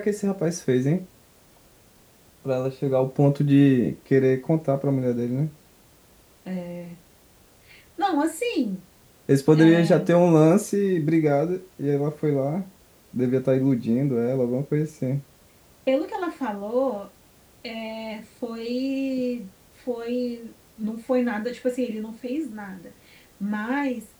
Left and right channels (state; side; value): identical; both; correlation 1.00